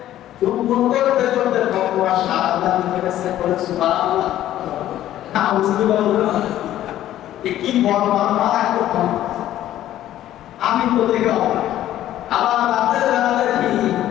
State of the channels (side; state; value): right; quieter; 12.9 dB